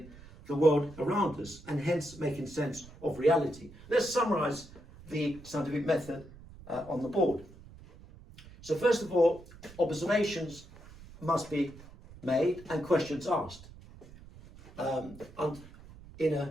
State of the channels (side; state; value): right; noise; rumble, 19 dB below the sound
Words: the world around us, and hence making sense of reality. Let's summarize the scientific method on the board. So first of all, observations must be made and questions asked in